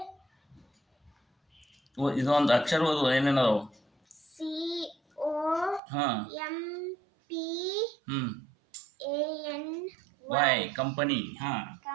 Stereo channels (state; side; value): drops out; left; at 5.8 s